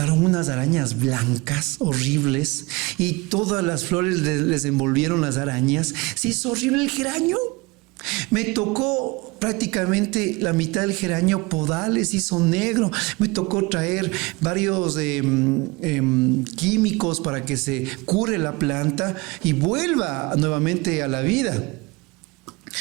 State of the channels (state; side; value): quieter; left; 24.5 dB